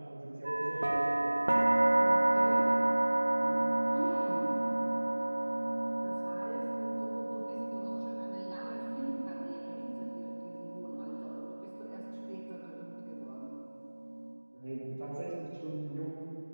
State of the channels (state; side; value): inverted; both; correlation -1.00